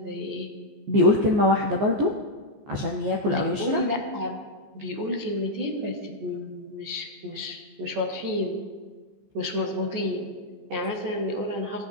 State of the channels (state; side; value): late; left; 14 ms